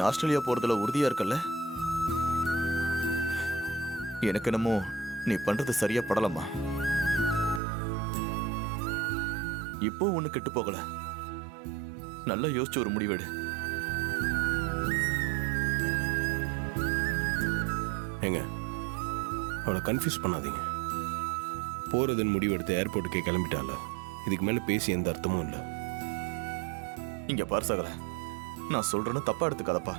ஆஸ்திரேலியா போறதுல உறுதியா இருக்கல்ல? எனக்கு என்னமோ நீ பண்றது சரியா படலம்மா. இப்போ ஒண்ணு கெட்டு போகல, நல்லா யோசிச்சு ஒரு முடிவெடு. ஏங்க, அவளை கன்ஃபியூஸ் பண்ணாதீங்க. போறதுன்னு முடிவெடுத்து ஏர்போர்ட்டுக்கே கிளம்பிட்டால, இதுக்கு மேல பேசி எந்த அர்த்தமும் இல்லை. இங்க பாரு சகல, நான் சொல்றேன்னு தப்பா எடுத்துக்காதப்பா.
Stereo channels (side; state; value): left; drops out; at 7.6 s